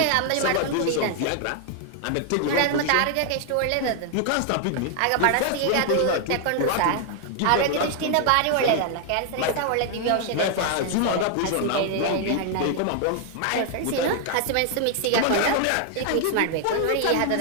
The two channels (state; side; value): different; both; correlation 0.00